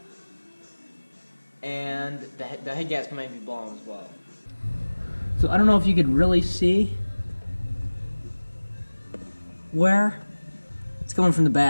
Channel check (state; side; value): inverted; both; correlation -1.00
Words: And the head gasket might be blown as well. So I don't know if you could really see where it's coming from the